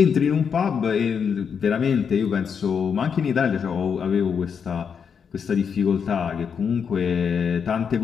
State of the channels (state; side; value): quieter; right; 6.7 dB